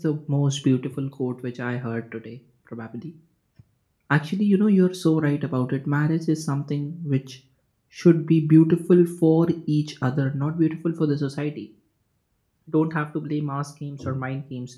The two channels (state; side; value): identical; both; correlation 1.00